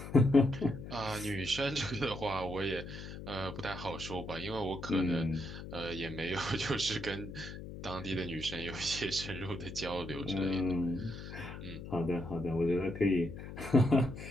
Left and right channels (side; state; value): left; noise; hum, 10 dB below the sound